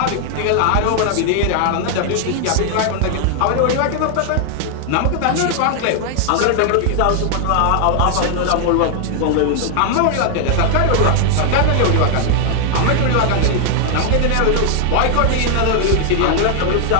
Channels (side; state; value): both; different; correlation 0.00